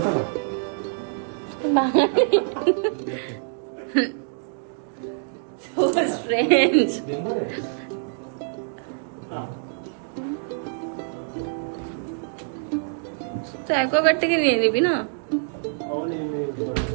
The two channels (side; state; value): left; silent; digital silence